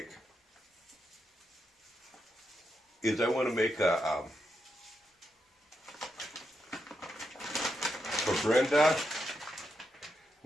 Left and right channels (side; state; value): both; normal; correlation 0.83